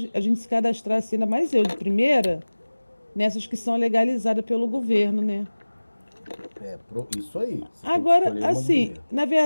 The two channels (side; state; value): both; inverted; correlation -1.00